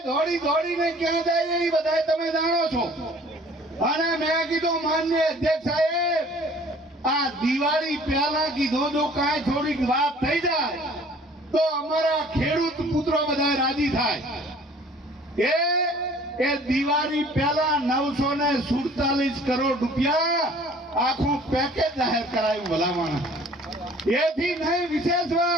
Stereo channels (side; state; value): both; normal; correlation 0.52